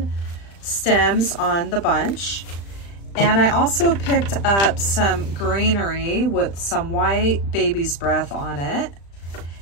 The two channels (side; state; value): right; late; 35 ms